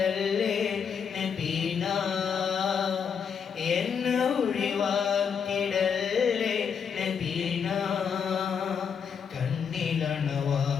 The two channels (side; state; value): right; quieter; 6.9 dB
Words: നബീന, എന്നെ ഒഴിവാക്കിടല്ലേ നബീന.